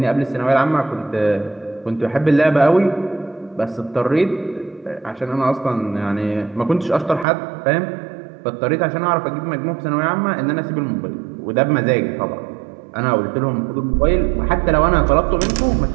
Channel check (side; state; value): left; drops out; at 7.2 s